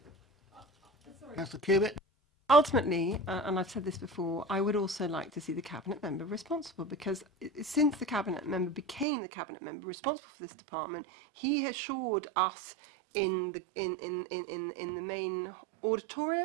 Councillor Cubitt. Ultimately, and I've said this before, I would also like to see the cabinet member responsible, because since the cabinet member became the cabinet member responsible for this department, he assured us in the main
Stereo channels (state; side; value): drops out; left; at 9.1 s